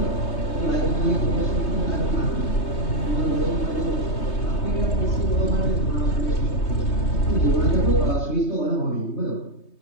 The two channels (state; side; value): late; right; 3.2 ms